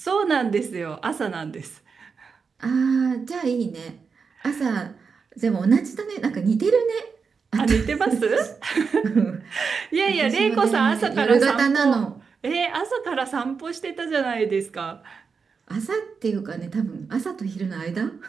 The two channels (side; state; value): left; quieter; 5.4 dB